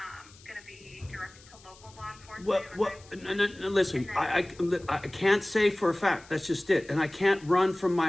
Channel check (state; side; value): noise; left; hiss, 24 dB below the sound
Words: going to be directed to local law enforcement. Well, no, listen, I can't say for a fact. That's just it. And I can't run from